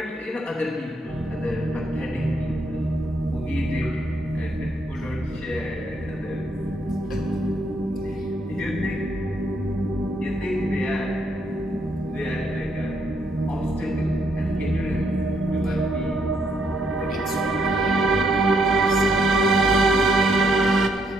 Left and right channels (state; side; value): normal; both; correlation 0.73